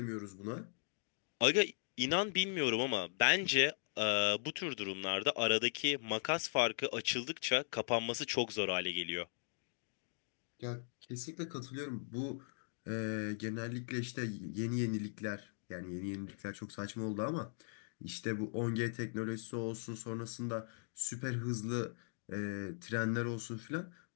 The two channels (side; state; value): right; silent; digital silence